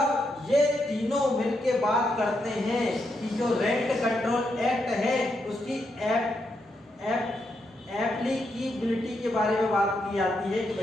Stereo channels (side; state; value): both; normal; correlation 0.81